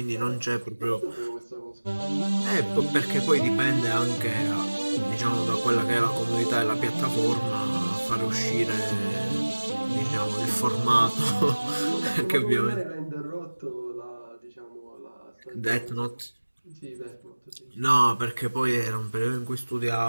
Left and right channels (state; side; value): inverted; both; correlation -1.00